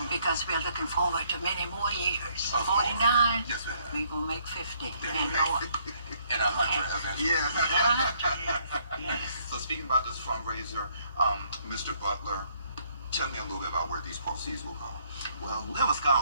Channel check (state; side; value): inverted; both; correlation -0.67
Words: Because we're looking forward to many more years. Of course. 49. Yes, ma'am. We're going to make 50 There and you go. more. And 100 eventually. Yeah. Yes. So speaking about this fundraiser, Mr. Butler, Tell me a little bit about where these proceeds will go. Well, we have a